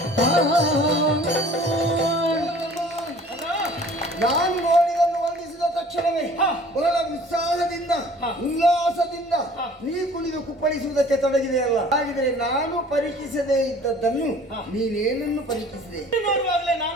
ನಾನು ನೋಡಿದನ್ನು ವಂದಿಸಿದ ತಕ್ಷಣವೇ ಬಹಳ ಉತ್ಸಾಹದಿಂದ ಉಲ್ಲಾಸದಿಂದ ನೀ ಕುಣಿದು ಕುಪ್ಪಳಿಸುವುದಕ್ಕೆ ತೊಡಗಿದೆಯಲ್ಲ. ಹಾಗಿದ್ರೆ ನಾನು ಪರೀಕ್ಷಿಸದೇ ಇದ್ದದ್ದನ್ನು ನೀನೇನನ್ನು ಪರೀಕ್ಷಿಸಿದೆ? ನೋಡುವಾಗಲೇ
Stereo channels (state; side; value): normal; both; correlation 0.50